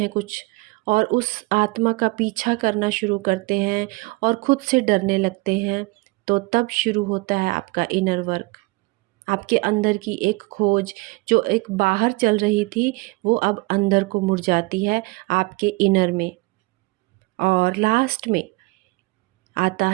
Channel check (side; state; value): left; quieter; 25.1 dB